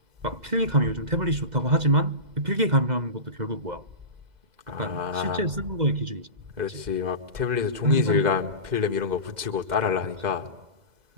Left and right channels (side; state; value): left; late; 2.0 ms